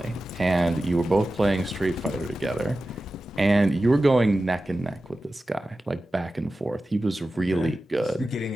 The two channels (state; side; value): normal; both; correlation 0.94